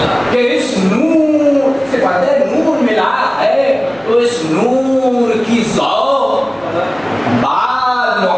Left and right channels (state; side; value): noise; right; hum, 28 dB below the sound